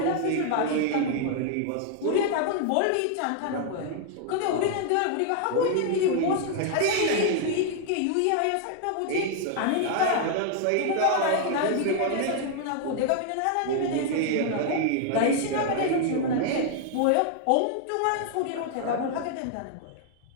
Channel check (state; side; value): different; both; correlation 0.00